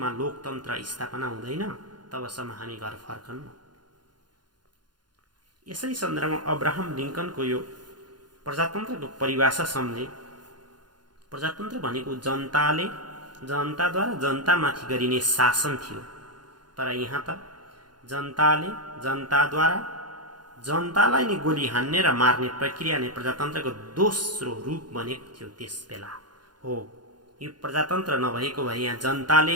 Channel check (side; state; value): left; late; 0.71 ms